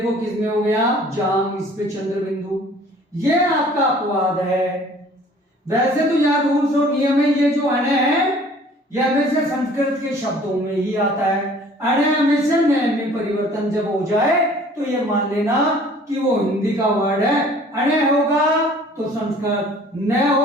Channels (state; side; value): normal; both; correlation 0.52